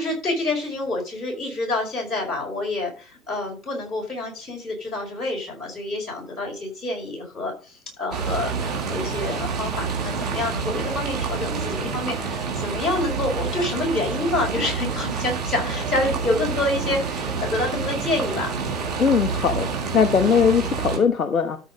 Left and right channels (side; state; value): both; normal; correlation 0.37